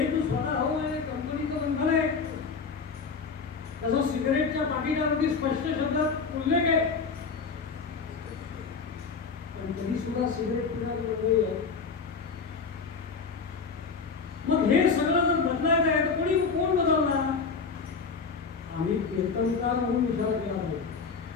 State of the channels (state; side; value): quieter; right; 5.1 dB